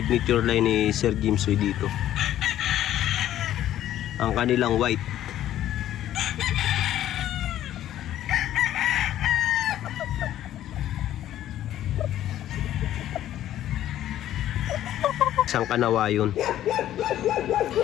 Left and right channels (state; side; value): quieter; right; 12.4 dB